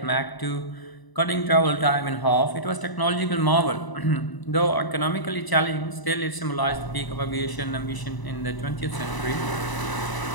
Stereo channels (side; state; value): right; late; 1.0 ms